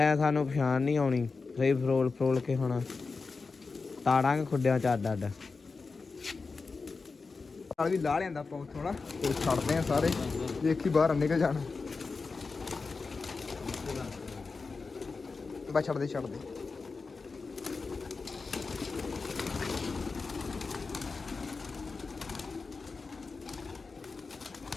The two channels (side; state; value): right; quieter; 4.3 dB